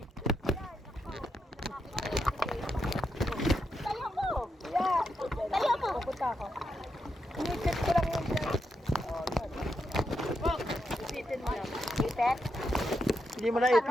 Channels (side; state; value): both; normal; correlation 0.83